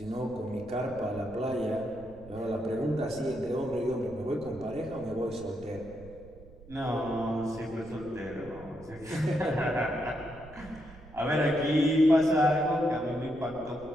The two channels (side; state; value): right; noise; rumble, 19 dB below the sound